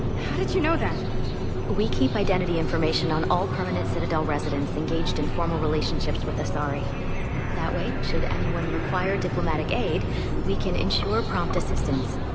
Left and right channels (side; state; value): both; identical; correlation 1.00